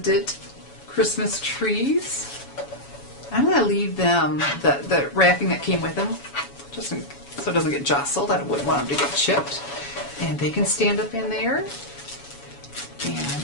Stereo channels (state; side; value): late; right; 7.1 ms